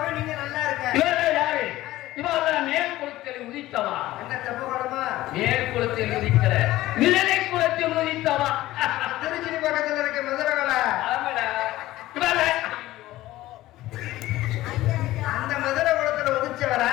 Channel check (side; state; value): right; quieter; 16.3 dB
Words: நீங்க நல்லா இருக்க. இவெல்லாம் யாரு இவெல்லாம் மேல் குளத்தில் உதித்தவா என்ன தப்பு குணமா? மேல் குளத்தில் உதிக்கிற நிழலை குளத்தில் உதித்தவா திருச்சி பக்கத்துல இருக்க மதுரகலை. ஆமாடா இவெல்லாம் அந்த மதுரை குளத்துல உதிச்சவரா?